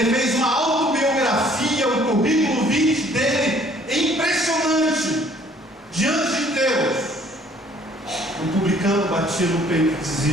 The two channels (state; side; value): normal; both; correlation 0.58